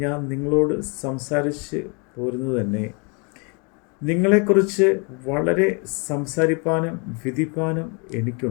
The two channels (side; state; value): right; quieter; 33.6 dB